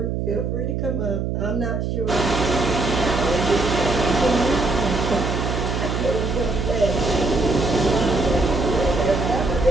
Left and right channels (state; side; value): noise; right; hum, 1 dB below the sound